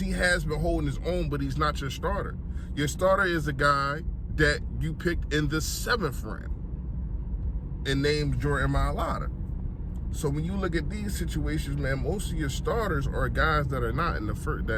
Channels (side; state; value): both; identical; correlation 1.00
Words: has been holding his own, but he's not your starter. Your starter is a guy that you picked in the 7th round and named Jordan Mailata. So when you look at these situations, man, most of your starters are guys that are not in the first,